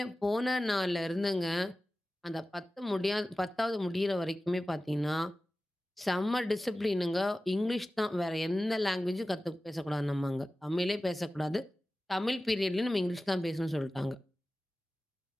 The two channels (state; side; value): normal; both; correlation 0.96